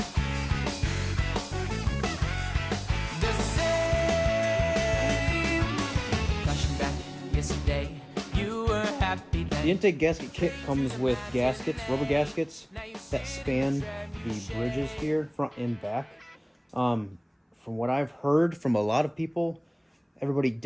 The same. Flashing back yesterday, you were happy then. The intake gasket kit comes with gaskets, rubber gaskets, that span the bridges here, front and back. From what I've heard from a lot of people, everybody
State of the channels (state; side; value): identical; both; correlation 1.00